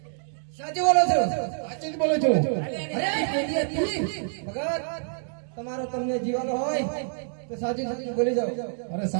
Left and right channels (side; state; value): left; silent; digital silence